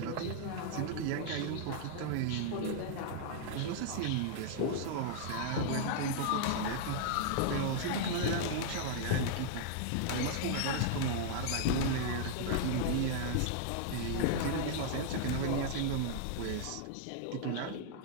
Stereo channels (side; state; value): both; different; correlation -0.01